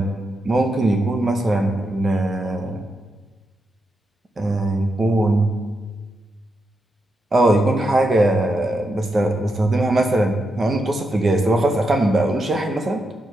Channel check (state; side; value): normal; both; correlation 0.84